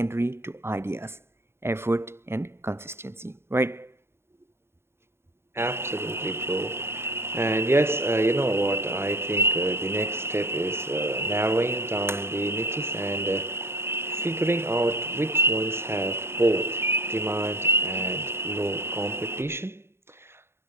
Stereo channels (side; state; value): left; late; 0.12 ms